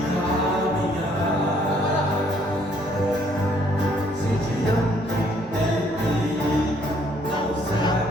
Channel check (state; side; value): normal; both; correlation 0.65